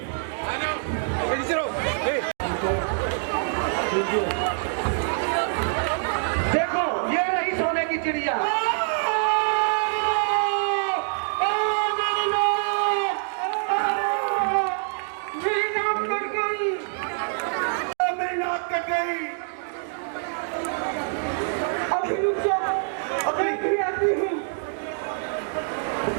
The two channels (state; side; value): silent; left; digital silence